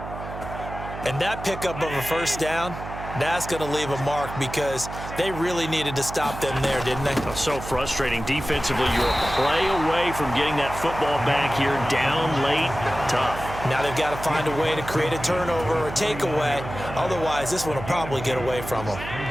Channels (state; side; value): noise; right; hum, 10 dB below the sound